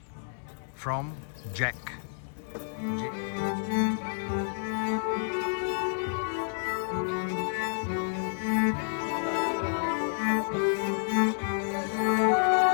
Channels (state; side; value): silent; right; digital silence